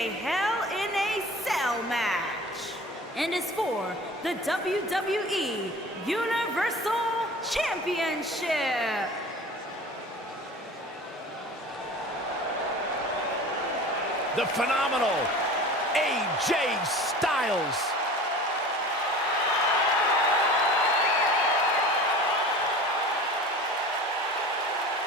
Hell in a Cell match and is for the WWE Universal Championship. The phenomenal AJ Styles.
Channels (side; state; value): both; normal; correlation 0.39